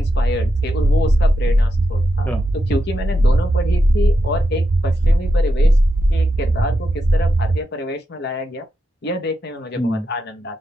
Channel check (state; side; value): normal; both; correlation 0.86